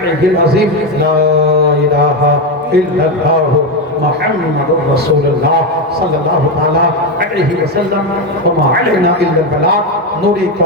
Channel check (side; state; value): both; normal; correlation 0.10